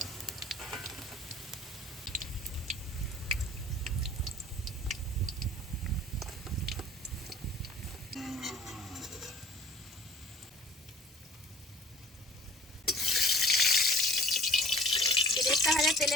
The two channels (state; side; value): normal; both; correlation 0.48